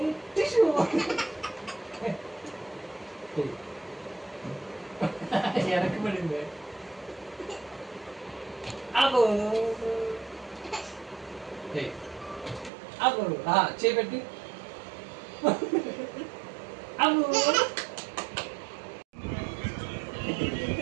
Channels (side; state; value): left; drops out; at 12.7 s